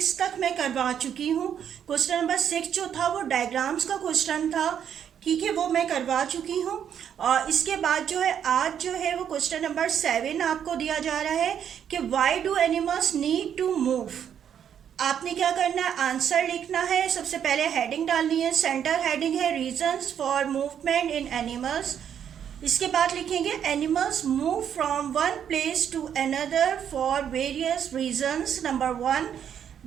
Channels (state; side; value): quieter; left; 8.8 dB